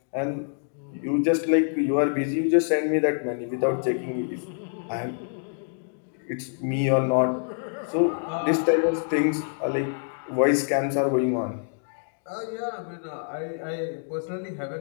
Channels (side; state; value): right; silent; digital silence